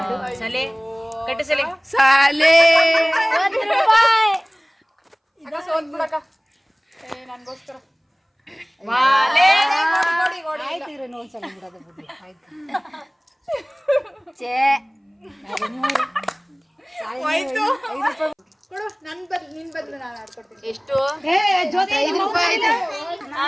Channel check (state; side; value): identical; both; correlation 1.00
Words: ಸಲೆ ಕಟ್ಟು ಸಲೆ ಸಾಲೆ ಎಷ್ಟು?